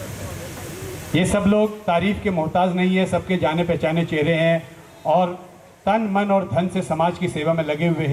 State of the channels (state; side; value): identical; both; correlation 1.00